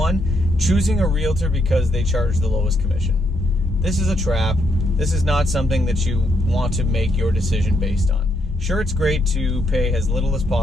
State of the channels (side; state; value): both; normal; correlation 0.77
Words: choosing a realtor because they charge the lowest commission. This is a trap. This is not something that you want to make your decision based on. Sure, it's great to pay as little as